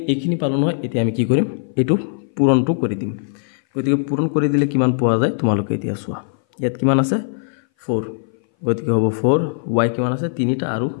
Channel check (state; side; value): silent; right; 60 dB below the other